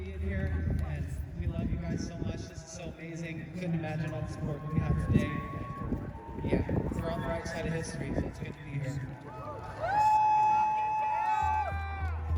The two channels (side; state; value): both; identical; correlation 1.00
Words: here, and we love you guys so much. This is so amazing. Couldn't imagine all the support we have today. Yeah, we're on the right side of history, so it's good to be here.